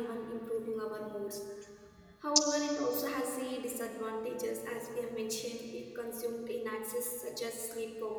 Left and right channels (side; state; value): both; identical; correlation 1.00